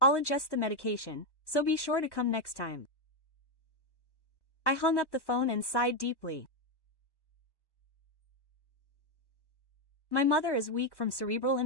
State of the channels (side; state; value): right; late; 1.1 ms